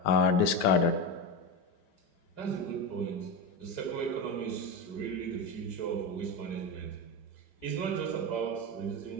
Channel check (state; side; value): late; right; 5.0 ms